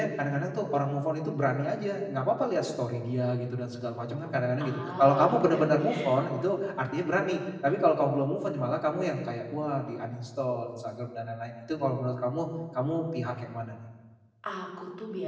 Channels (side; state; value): both; identical; correlation 1.00